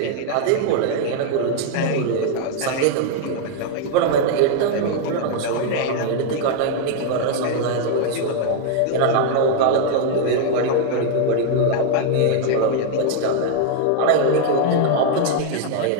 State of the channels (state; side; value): different; both; correlation 0.00